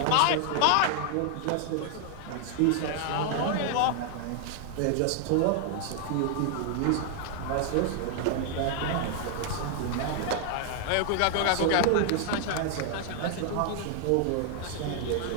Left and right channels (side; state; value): both; different; correlation 0.00